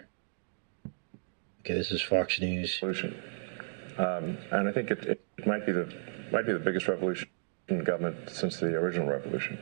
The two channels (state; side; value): silent; left; digital silence